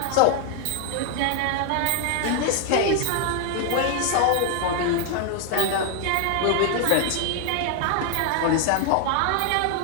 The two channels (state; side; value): different; both; correlation 0.00